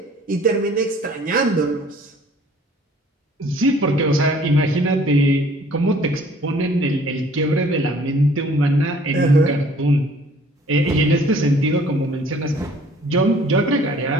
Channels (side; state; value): both; normal; correlation 0.55